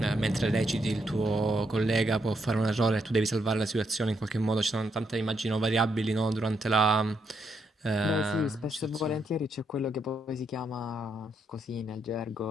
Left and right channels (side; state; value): both; normal; correlation 0.78